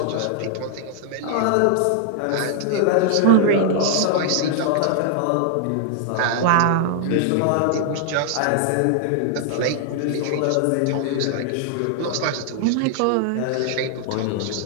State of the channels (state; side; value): different; both; correlation 0.00